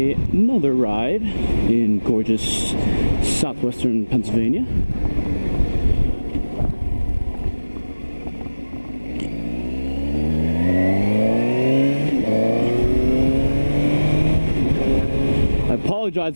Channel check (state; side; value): inverted; both; correlation -1.00